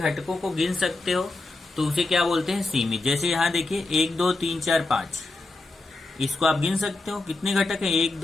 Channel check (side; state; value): right; quieter; 3.2 dB